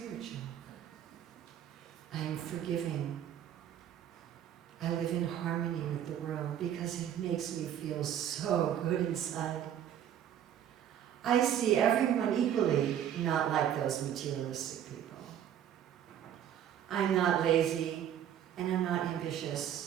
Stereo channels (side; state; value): left; quieter; 10.2 dB